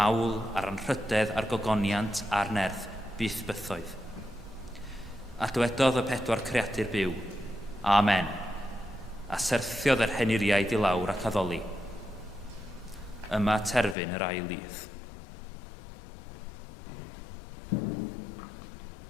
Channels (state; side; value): drops out; right; at 14.0 s